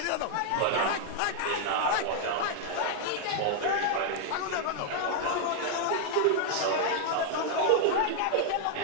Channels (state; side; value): different; both; correlation 0.00